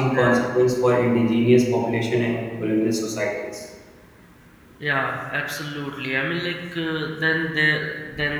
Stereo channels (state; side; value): identical; both; correlation 1.00